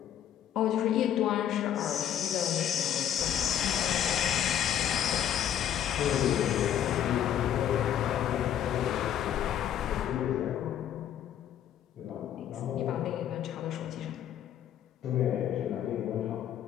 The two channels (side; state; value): right; quieter; 10.3 dB